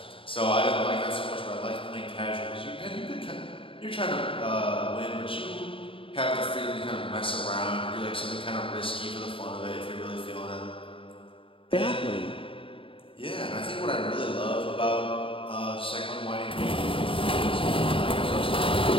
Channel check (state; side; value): late; right; 0.26 ms